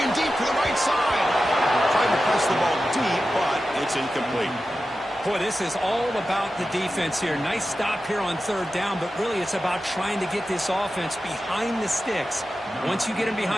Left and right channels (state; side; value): normal; both; correlation 0.93